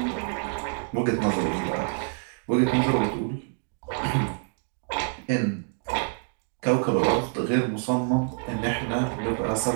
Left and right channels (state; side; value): silent; left; digital silence